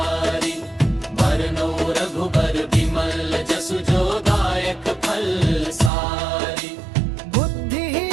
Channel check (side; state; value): left; drops out; at 5.9 s